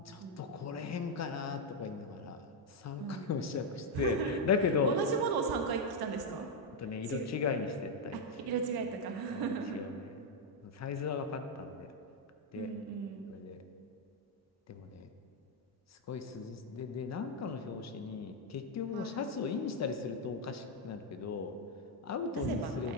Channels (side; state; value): both; normal; correlation 0.01